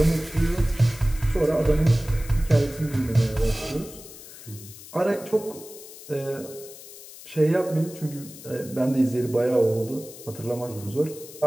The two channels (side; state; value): left; noise; hiss, 16 dB below the sound